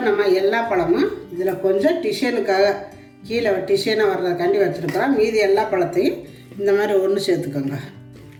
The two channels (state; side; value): identical; both; correlation 1.00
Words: நம்ம எல்லா பழமும் இதில் கொஞ்சம் டிசைனுக்காக கீழே டிசைனாக வர்றதுக்காண்டி வச்சுருக்குறோம். மீதி எல்லா பழத்தையும் இந்த மாதிரி ஒன்று சேர்த்துக்கோங்க.